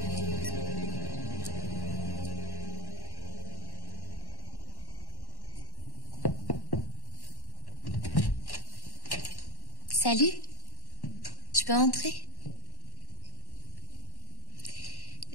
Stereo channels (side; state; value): right; late; 1.1 ms